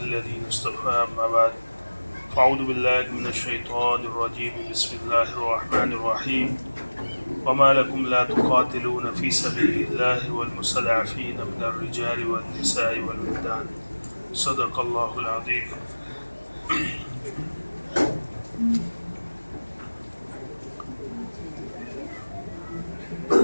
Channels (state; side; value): inverted; both; correlation -1.00